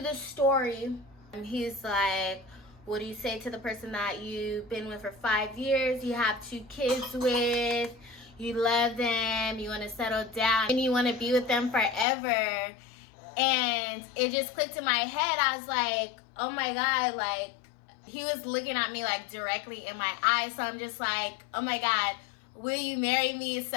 the story. He's like, what do you say to the person that you've been with for 5 years, you have 2 kids with, you love them, you want to settle down, and you want to be with them forever? And it just clicked in my head. I was like, oh my God, like, he was looking at me like directly in my eyes. So I'm just like, oh my God, will you marry me?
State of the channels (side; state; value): right; drops out; at 12.1 s